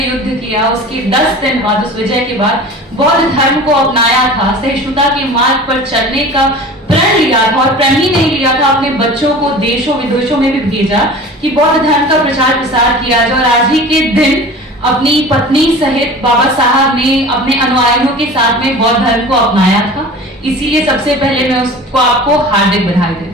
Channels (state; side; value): normal; both; correlation 0.38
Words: किया, उसके 10 दिन बाद, उस विजय के बाद बौद्ध धर्म को अपनाया था, सहिष्णुता के मार्ग पर चलने का प्रण लिया था। और प्रण ही नहीं लिया था, अपने बच्चों को देशों विदेशों में भी भेजा कि बौद्ध धर्म का प्रचार प्रसार किया जाए। और आज ही के दिन अपनी पत्नी सहित बाबा साहब ने अपने अनुयायियों के साथ में बौद्ध धर्म को अपनाया था। इसीलिए सबसे पहले मैं उसको आपको हार्दिक बधाई